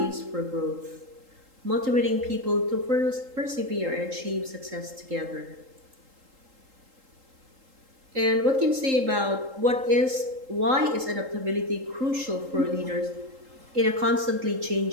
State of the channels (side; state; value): left; late; 3.8 ms